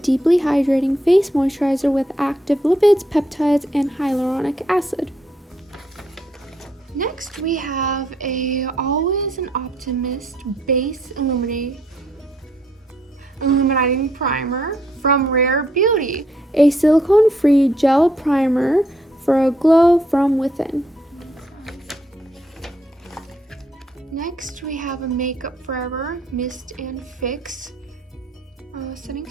hydrating face moisturizer with active lipids, peptides, and hyaluronic acid. Next we have a Always an Optimist Base Illuminating Primer from Rare Beauty. A silicone-free gel primer for a glow from within. Next we have a Makeup Forever Mist and Fix setting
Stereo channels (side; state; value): both; normal; correlation 0.72